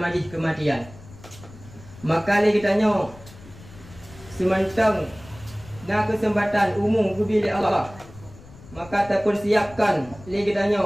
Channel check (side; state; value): left; noise; rumble, 20 dB below the sound